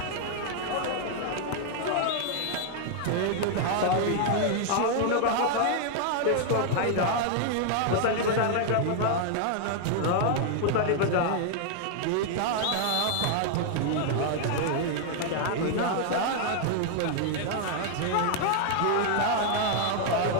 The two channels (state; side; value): different; both; correlation 0.00